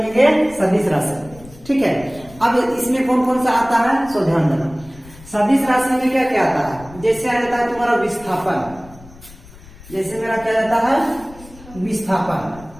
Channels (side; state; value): left; noise; rumble, 20 dB below the sound